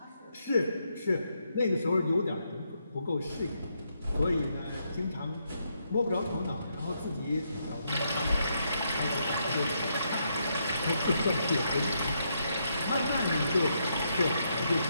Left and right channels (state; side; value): inverted; both; correlation -0.78